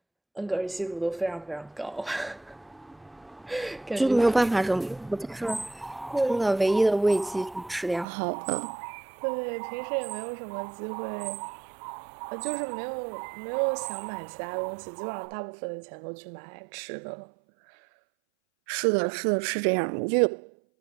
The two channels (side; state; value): left; drops out; at 8.1 s